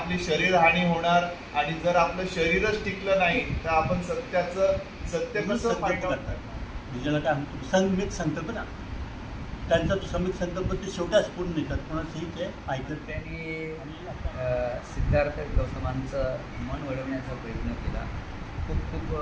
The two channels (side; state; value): both; identical; correlation 1.00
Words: शरीर हानी होणार आणि जर आपलं शरीरच टिकलं नाही तर आपण सत्य कसं फाईंड आउट करणार. ज्याला काय म्हणतो संमित संकल्प ना, त्यांचा तो संमित संकल्प ते शेवटाच पूर्ण निघतात, कोणाचंही ते ऐकत. त्यांनी सिद्धार्थ गौतमांचं मन वळवण्याचा प्रयत्न केला. खूप खूप